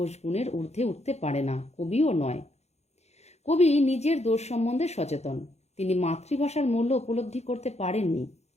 গুণের ঊর্ধ্বে উঠতে পারে না, কবিও নয়। কবি নিজের দোষ সম্বন্ধে সচেতন। তিনি মাতৃভাষার মূল্য উপলব্ধি করতে পারেননি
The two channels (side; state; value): right; late; 0.31 ms